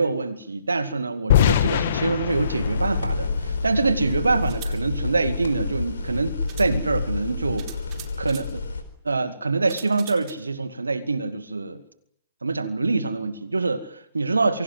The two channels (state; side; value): inverted; both; correlation -0.77